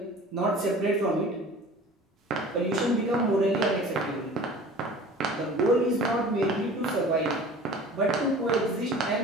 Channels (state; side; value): normal; both; correlation 0.43